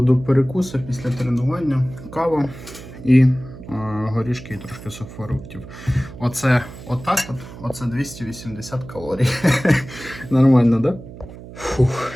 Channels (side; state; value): right; noise; hum, 15 dB below the sound